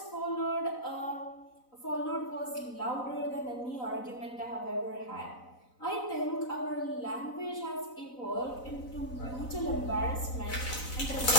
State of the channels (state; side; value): late; right; 4.0 ms